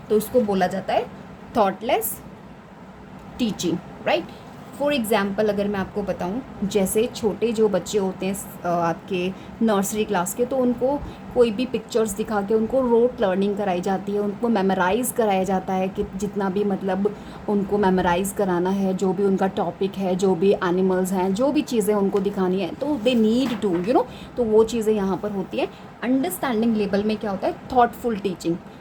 तो इसको बोला जाता है thoughtless teaching, right. For example अगर मैं आपको बताऊं, जैसे छोटे जो बच्चे होते हैं आपके नर्सरी क्लास के, तो उनको कोई भी पिक्चर्स दिखा के उनको रोट लर्निंग कराई जाती है, उनको मेमोराइज़ कराया जाता है कि जितना भी मतलब उनको मेमोराइज़ कराना है, जो भी उनका टॉपिक है, जो भी एनिमल्स हैं, जो भी चीज़ें उनको दिखानी है, तो दे नीड टू तो वो चीज़ें यहाँ पर होती हैं। अंडरस्टैंडिंग लेवल में क्या होता है, थॉटफुल टीचिंग,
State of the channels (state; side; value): identical; both; correlation 1.00